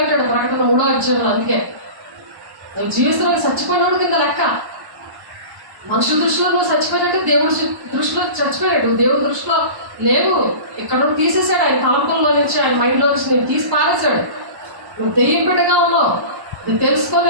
ప్రకటన 3వ అధ్యాయంలో. అందుకే నువ్వు జీవిస్తున్నావు చచ్చిపోయినాడు కింద లెక్క. మనుషుల దృష్టిలో నువ్వు చచ్చిపోయినట్టు, దేవుడి దృష్టిలో చచ్చిపోయాడు. దేవుడి దృష్టిలో లేవు. ఇక్కడ నుండి తీసేసాడు ఆయన తలంపుల్లో నుంచి, ఆయన మైండ్లో నుంచి నేను తీసి పారేశాడు. నువ్వు దెయ్యం బిడ్డగా ఉన్నావు. నువ్వు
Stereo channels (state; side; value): late; left; 1.1 ms